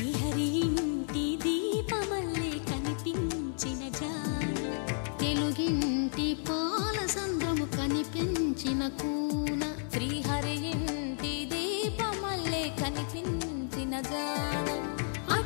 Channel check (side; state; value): right; silent; 56 dB below the other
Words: ఇంటి దీపమల్లే కనిపించిన జాన తెలుగింటి పాలసంద్రము కనిపించిన కూన శ్రీహరి ఇంటి దీపమల్లే కనిపించిన జాన